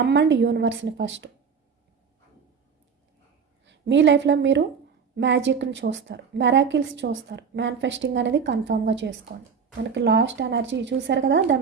యూనివర్స్ని ఫస్ట్. మీ లైఫ్లో మీరు మ్యాజిక్ని చూస్తారు, మెరాకిల్స్ చూస్తారు. మేనిఫెస్టింగ్ అనేది కన్ఫామ్గా చేసుకోండి. మనకి లాస్ట్ ఎనర్జీ చూసారు కదా, the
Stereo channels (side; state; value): left; quieter; 6.1 dB